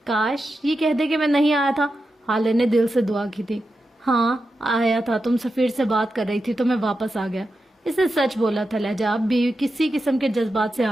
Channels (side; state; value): both; normal; correlation 0.90